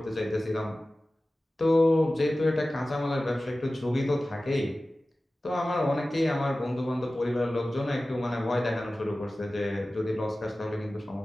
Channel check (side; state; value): both; normal; correlation 0.96